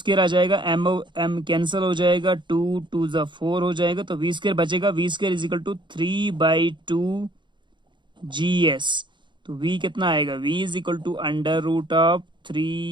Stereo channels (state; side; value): late; left; 0.23 ms